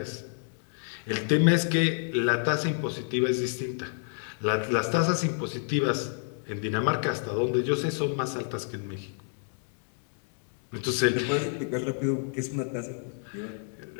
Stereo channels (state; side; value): silent; right; 58 dB below the other